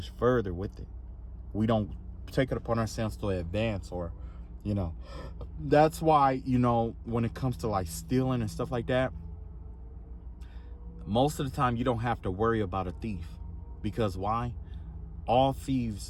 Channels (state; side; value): identical; both; correlation 1.00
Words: further with it. We don't take it upon ourselves to advance, or, that's why, when it comes to like stealing and stuff like that, most of the time you don't have to worry about a thief. Because why? All